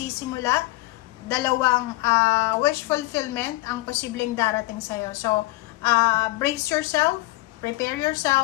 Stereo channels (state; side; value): quieter; right; 19.7 dB